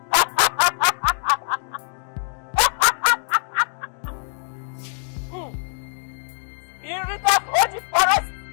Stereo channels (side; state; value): right; silent; digital silence